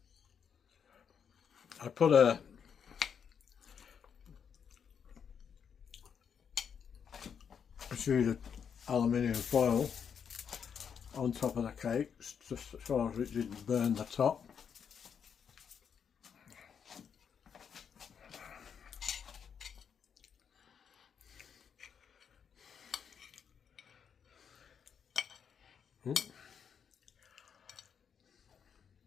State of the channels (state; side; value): quieter; right; 7.3 dB